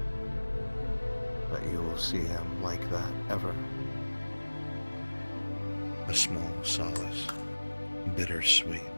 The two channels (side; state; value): both; inverted; correlation -1.00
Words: that you will see him like that ever. A small solace, bittersweet